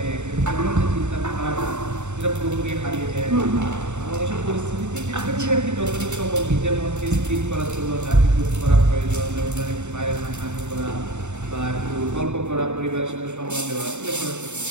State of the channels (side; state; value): left; late; 0.84 ms